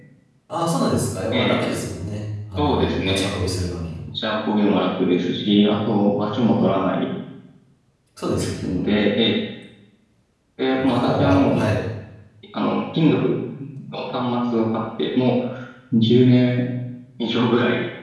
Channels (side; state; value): both; identical; correlation 1.00